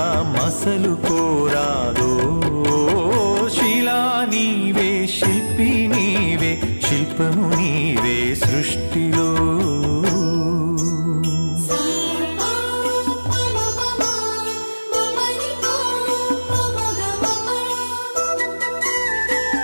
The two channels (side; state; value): both; inverted; correlation -1.00